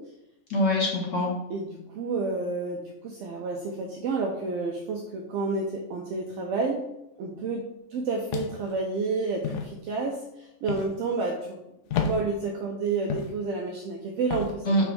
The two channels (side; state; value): left; late; 3.5 ms